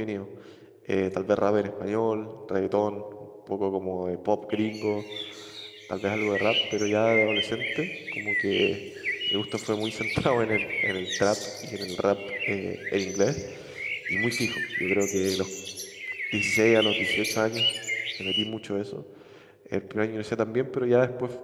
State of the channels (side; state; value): both; identical; correlation 1.00